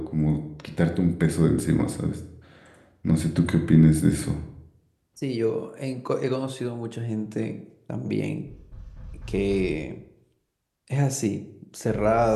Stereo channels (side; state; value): both; identical; correlation 1.00